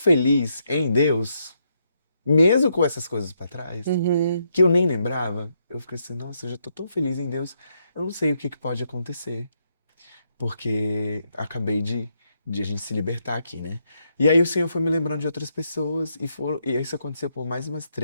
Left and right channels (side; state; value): both; inverted; correlation -0.78